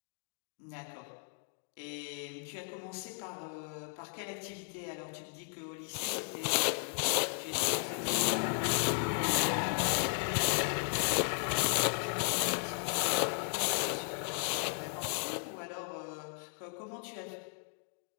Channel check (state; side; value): silent; right; 54 dB below the other